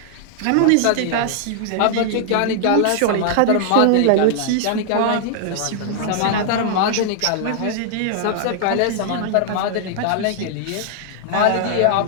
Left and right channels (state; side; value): different; both; correlation -0.01